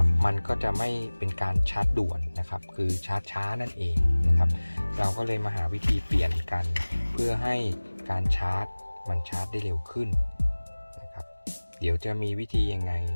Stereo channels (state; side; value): inverted; both; correlation -1.00